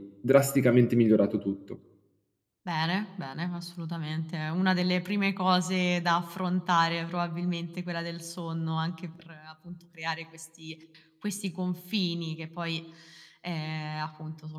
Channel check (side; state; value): both; identical; correlation 1.00